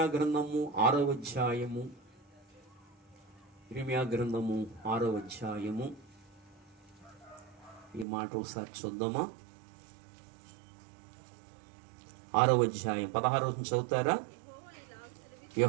గ్రంథము 6వ అధ్యాయము. ఇర్మియా గ్రంథము 6వ అధ్యాయము. ఈ మాట ఒకసారి చూద్దామా? 6వ అధ్యాయం 16వ చదువుతారా?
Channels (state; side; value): drops out; left; at 8.1 s